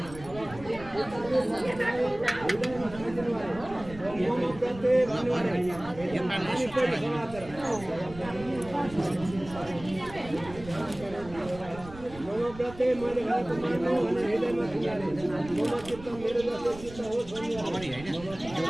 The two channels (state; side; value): noise; right; rumble, 16 dB below the sound